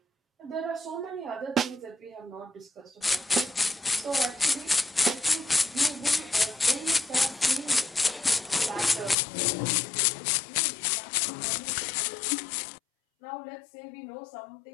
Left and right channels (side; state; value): right; drops out; at 9.2 s